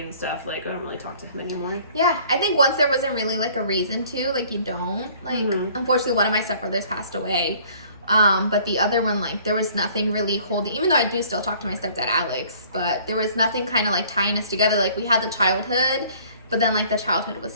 and stuff, like, I don't really talk to him anymore. Yeah, I think once there wasn't really, like, a reason to, like, you don't. Like, unfortunately, one of my stepbrothers passed away. But the other one, like, there was nothing really holding, even though I do still talk to my stepdad, Alex, but there was nothing kind of, like, tying us together. Like, we had the childhood, but then, like, the childhood was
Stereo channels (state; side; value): inverted; both; correlation -0.55